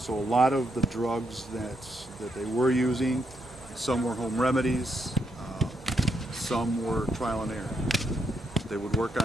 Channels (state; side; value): normal; both; correlation 0.78